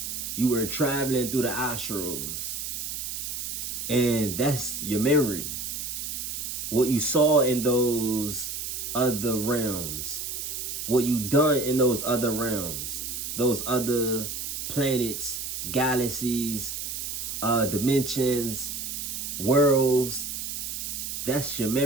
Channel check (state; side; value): noise; right; hiss, 5 dB below the sound